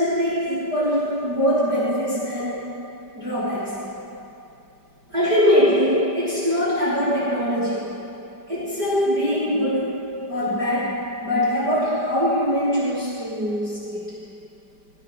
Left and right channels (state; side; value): late; left; 5.0 ms